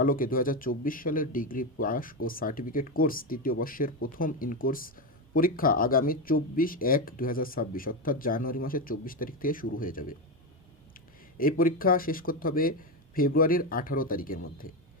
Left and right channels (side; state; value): both; normal; correlation 0.12